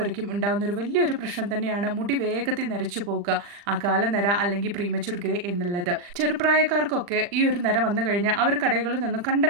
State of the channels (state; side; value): late; left; 40 ms